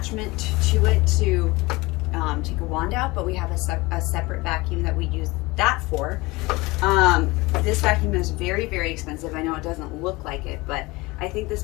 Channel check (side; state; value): right; quieter; 22.4 dB